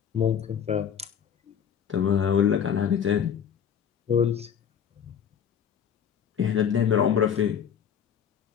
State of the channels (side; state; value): right; quieter; 8.2 dB